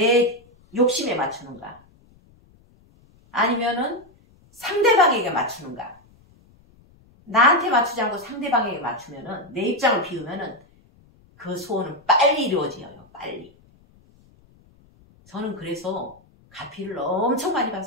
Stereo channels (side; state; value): left; noise; rumble, 29 dB below the sound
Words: 욕심에 맞추는가? 아니면은 상대방에게 맞추는가? 나한테 맞추지 않고 상대방에게 맞추면은 내 입장을 비우면은 그 소원은 빨리 이루어져요. 빨리. 저는 그래서 가피를 엄청 많이